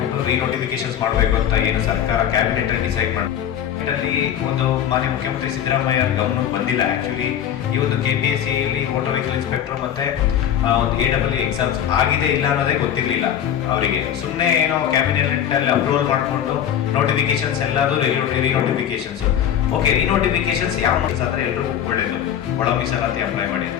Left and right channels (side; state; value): right; quieter; 9.8 dB